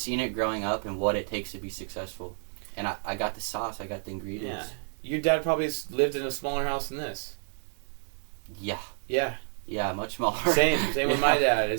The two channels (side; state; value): left; silent; 58 dB below the other